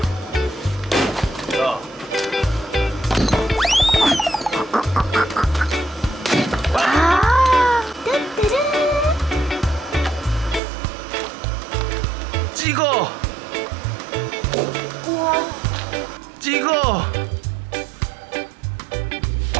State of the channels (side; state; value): left; drops out; at 10.6 s